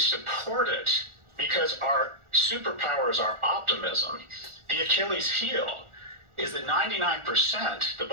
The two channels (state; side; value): late; left; 1.4 ms